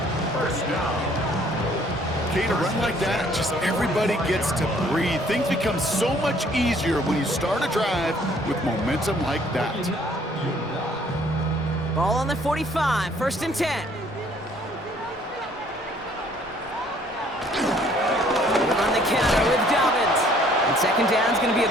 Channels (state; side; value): normal; both; correlation 0.60